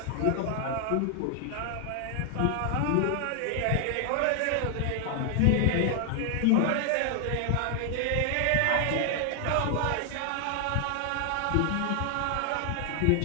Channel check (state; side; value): different; both; correlation 0.00